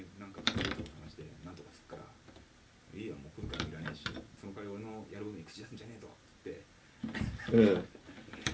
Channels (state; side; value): identical; both; correlation 1.00